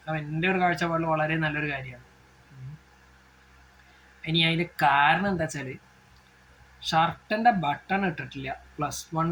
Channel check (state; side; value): identical; both; correlation 1.00